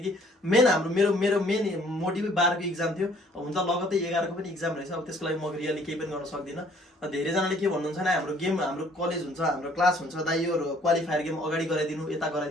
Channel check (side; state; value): both; normal; correlation 0.59